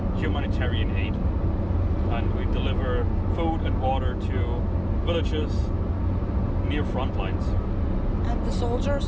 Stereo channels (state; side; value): identical; both; correlation 1.00